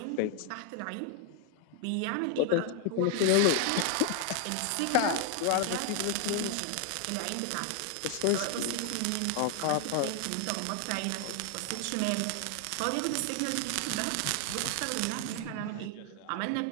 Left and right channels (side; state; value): both; different; correlation 0.00